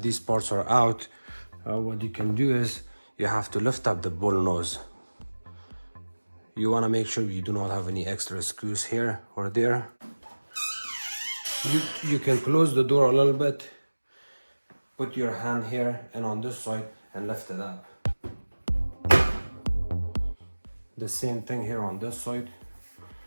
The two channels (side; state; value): both; inverted; correlation -1.00